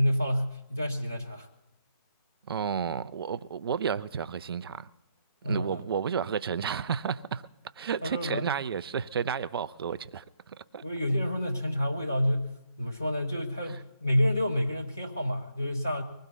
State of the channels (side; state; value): both; inverted; correlation -0.75